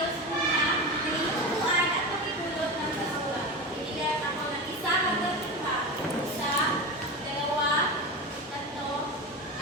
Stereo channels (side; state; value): both; normal; correlation 0.24